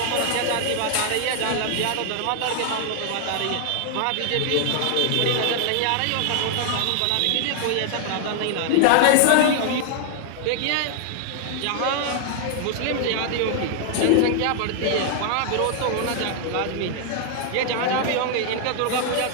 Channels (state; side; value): different; both; correlation 0.00